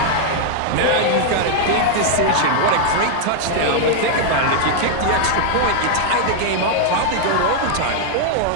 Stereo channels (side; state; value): both; different; correlation 0.00